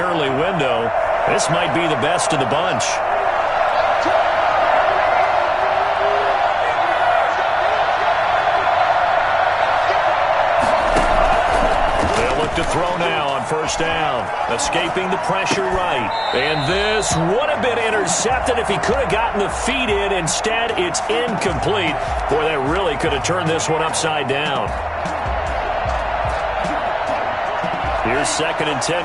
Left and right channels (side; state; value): both; identical; correlation 1.00